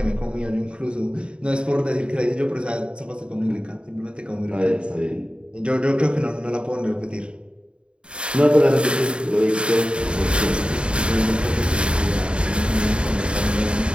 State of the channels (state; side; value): late; left; 0.054 ms